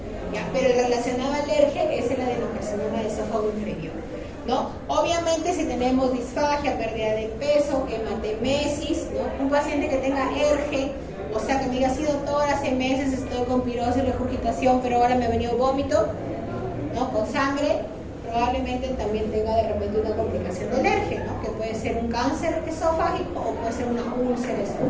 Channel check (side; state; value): both; identical; correlation 1.00